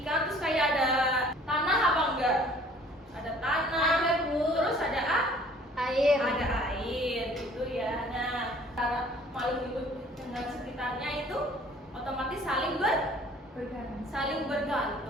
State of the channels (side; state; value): both; normal; correlation 0.53